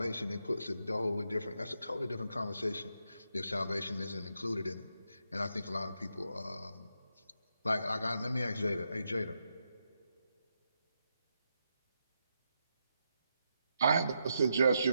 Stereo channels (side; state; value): both; inverted; correlation -0.83